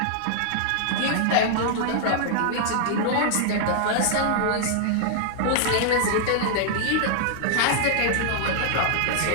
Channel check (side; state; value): both; different; correlation -0.01